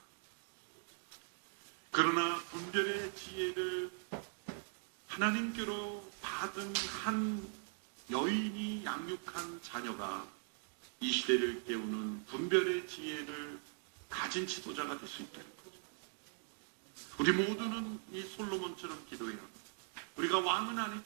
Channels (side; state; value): left; silent; 51 dB below the other